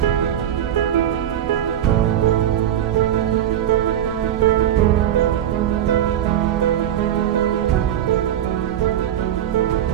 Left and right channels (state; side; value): quieter; left; 10.7 dB